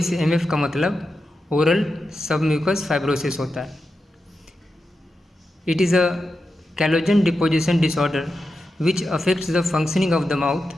का मतलब ओरल सबम्यूकस फाइब्रोसिस होता है। It is a collagen deposition disorder which affects the functioning of the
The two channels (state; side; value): normal; both; correlation 0.89